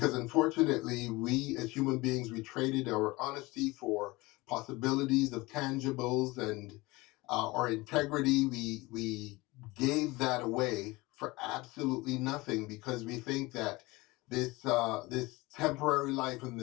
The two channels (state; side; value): quieter; right; 22.0 dB